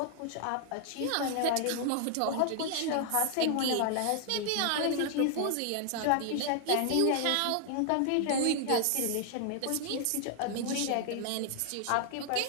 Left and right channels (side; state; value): both; different; correlation 0.00